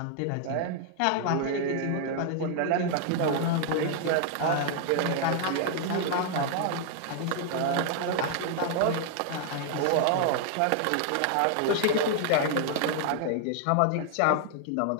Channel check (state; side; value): different; both; correlation 0.00